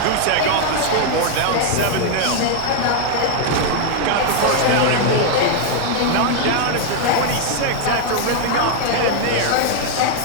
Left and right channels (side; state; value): both; different; correlation 0.00